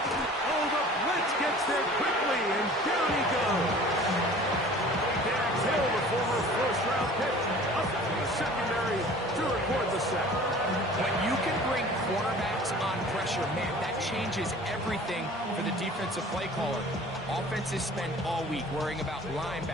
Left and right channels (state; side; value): normal; both; correlation 0.46